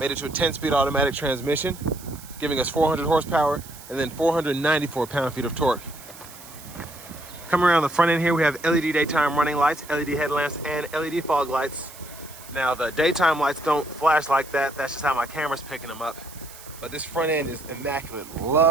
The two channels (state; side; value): noise; right; hiss, 18 dB below the sound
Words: made into a 10-speed automatic transmission, giving us 400 horsepower and then 494 pound-feet of torque. Coming around the front end here, we have LED daytime running lights, LED headlamps, and LED fog lights. Now, the daytime lights don't flash like that. That's just how my camera's picking them up. But this front end is immaculate.